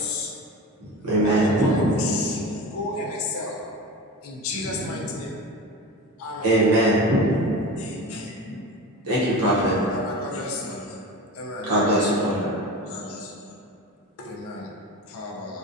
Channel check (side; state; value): both; normal; correlation 0.30